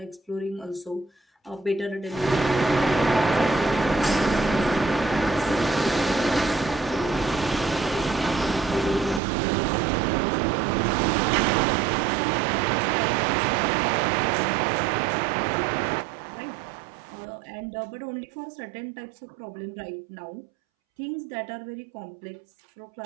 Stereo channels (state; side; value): drops out; left; at 9.2 s